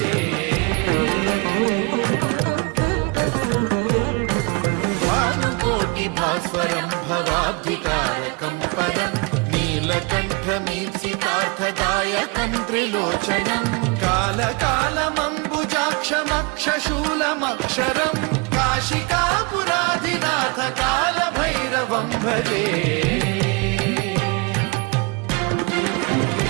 भास्वरं भवाब्धितारकं परं नीलकण्ठमीप्सितार्थदायकं त्रिलोचनं कालकालमम्बुजाक्षमक्षशूलमक्षरं काशिकापुराधिनाथ कालभैरवं भजे।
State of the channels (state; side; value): quieter; left; 29.8 dB